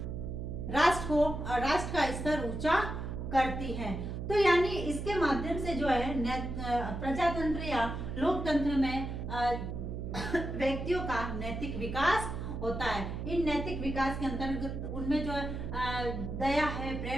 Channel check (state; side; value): noise; right; hum, 5 dB below the sound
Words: राष्ट्र का स्तर ऊंचा करती है। तो यानी इसके माध्यम से जो है प्रजातंत्र या लोकतंत्र में व्यक्तियों का नैतिक विकास होता है। इन नैतिक विकास के अंतर्गत उनमें जो दया है,